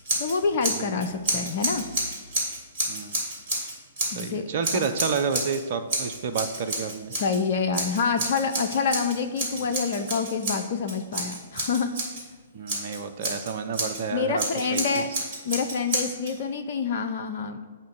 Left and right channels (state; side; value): inverted; both; correlation -0.43